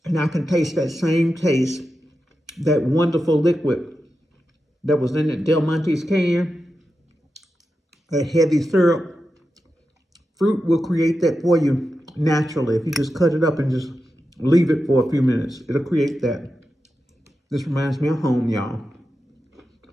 And I can taste that same taste, that wonderful liquid that was in that Del Monte's can, that heavy syrup. Fruit will create that for you naturally. If you just cut it up and just leave it for a few minutes, it'll create that. This reminds me of home, y'all.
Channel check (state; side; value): normal; both; correlation 0.90